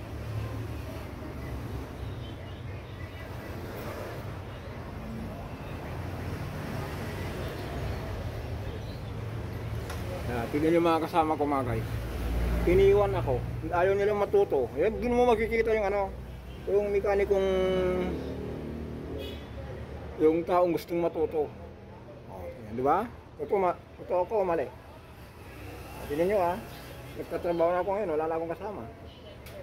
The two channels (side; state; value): both; identical; correlation 1.00